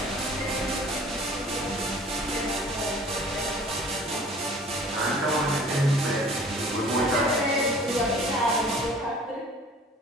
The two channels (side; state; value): both; normal; correlation 0.49